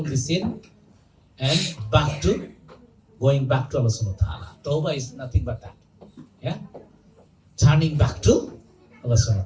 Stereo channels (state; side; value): identical; both; correlation 1.00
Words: the sin and going back to Allah subhanahu wa ta'ala. Tawbah is nothing but that. Yeah? Turning back to Allah subhanahu